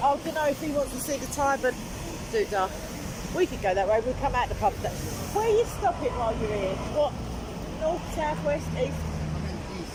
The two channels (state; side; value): identical; both; correlation 1.00